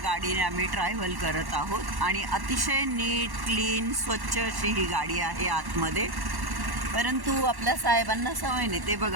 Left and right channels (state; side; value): late; left; 1.1 ms